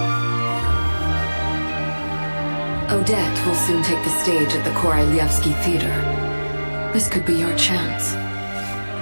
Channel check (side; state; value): both; inverted; correlation -1.00